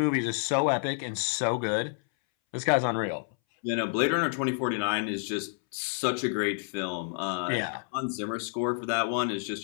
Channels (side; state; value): right; silent; 59 dB below the other